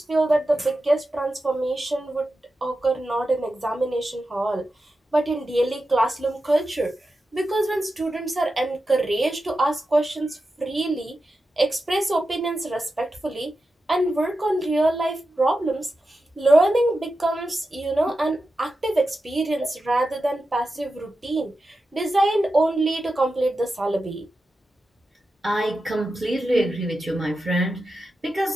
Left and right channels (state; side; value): normal; both; correlation 0.91